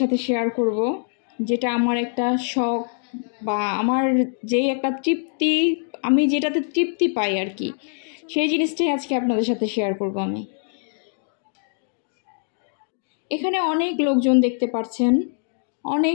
সাথে শেয়ার করব, যেটা আমার একটা শখ বা আমার যেই একটা তৃপ্তি, আমি যেটাতে তৃপ্তি পাই আর কি, সেই জিনিসটাই আজকে আপনাদের সাথে শেয়ার করব আমি। এখানে অনেক লোকজন দেখতে পাচ্ছেন,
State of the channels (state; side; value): silent; right; digital silence